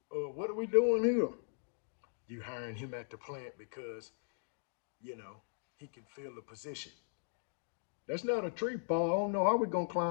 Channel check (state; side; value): silent; right; digital silence